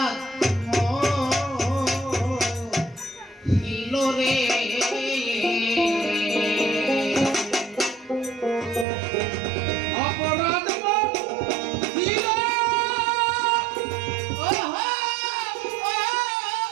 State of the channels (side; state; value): left; drops out; at 8.8 s